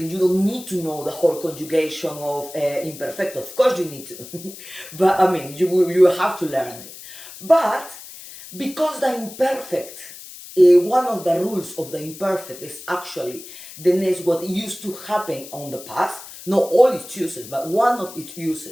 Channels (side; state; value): left; noise; hiss, 15 dB below the sound